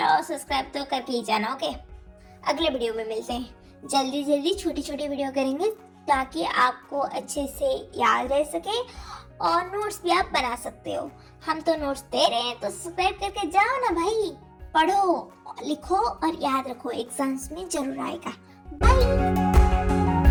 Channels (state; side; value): identical; both; correlation 1.00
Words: और सब्सक्राइब तो करके ही जाना। ओके, अगले वीडियो में मिलते हैं। जल्दी छोटी छोटी वीडियो करेंगे ताकि आपको अच्छे से याद रह सके और नोट्स भी आप बना सकते हो। हम तो नोट्स दे रहे हैं तो सब्सक्राइब करके जाओ ना भाई, पढ़ो, लिखो और याद रखो, एग्जाम्स में जरूर आएगा। बाय।